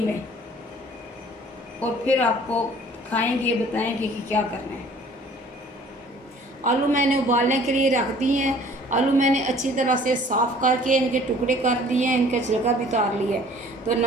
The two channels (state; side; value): normal; both; correlation 0.52